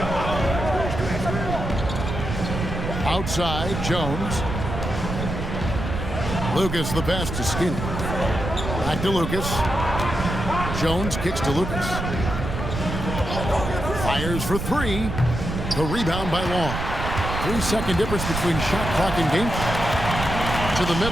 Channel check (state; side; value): noise; right; rumble, 4 dB below the sound